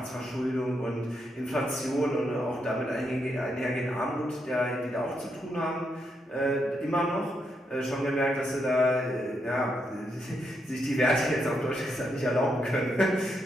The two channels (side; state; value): both; normal; correlation 0.80